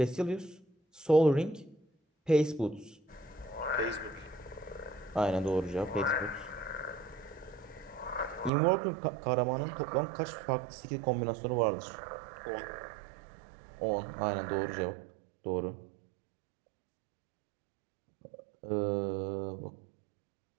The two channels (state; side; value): drops out; left; at 8.5 s